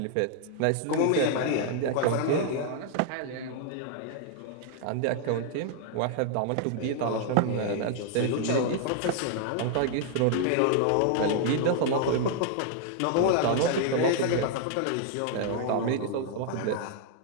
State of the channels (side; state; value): both; different; correlation 0.00